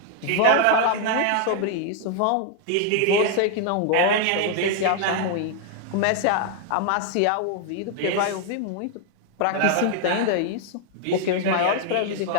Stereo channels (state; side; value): different; both; correlation 0.00